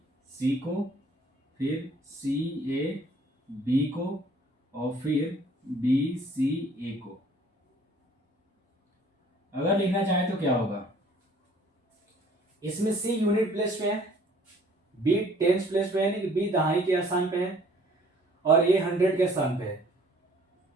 को, फिर CAB को और फिर BCA को, अगर लिखना चाहें तो क्या होगा, इसमें C यूनिट प्लेस पे है, B टेंस प्लेस पे है, यानी कि B दहाई के स्थान पे है और A 100 के स्थान पे है।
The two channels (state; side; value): normal; both; correlation 0.56